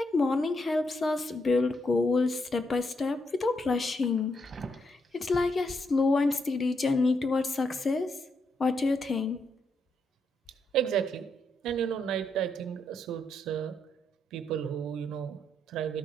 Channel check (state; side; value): normal; both; correlation 0.79